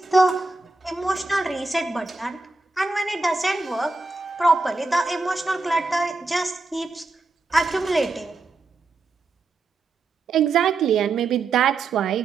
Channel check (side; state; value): left; quieter; 3.6 dB